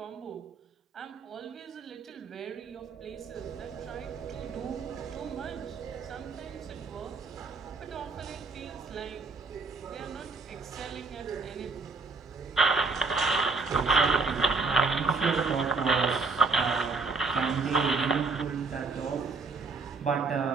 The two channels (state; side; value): quieter; left; 4.2 dB